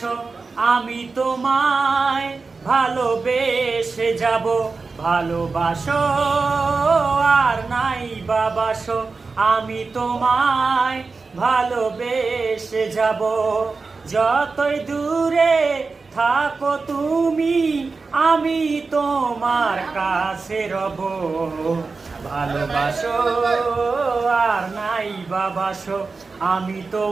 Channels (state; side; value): quieter; left; 4.2 dB